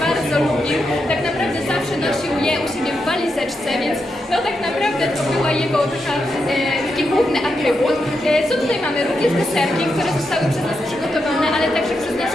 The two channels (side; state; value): both; normal; correlation 0.85